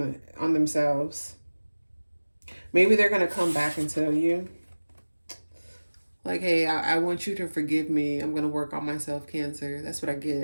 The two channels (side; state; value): both; inverted; correlation -1.00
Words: themselves. Maybe they're gonna come back and tell you, like, hey, I want you to forgive me. I'm gonna work on myself, Cancer. That's what I